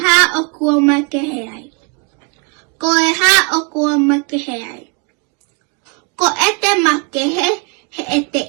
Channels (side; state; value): left; quieter; 34.6 dB